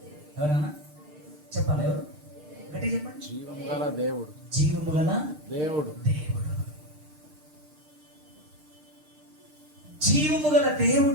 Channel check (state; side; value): late; left; 6.6 ms